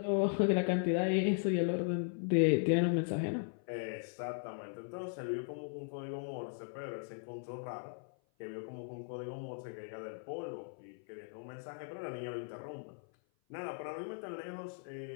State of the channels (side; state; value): right; silent; 53 dB below the other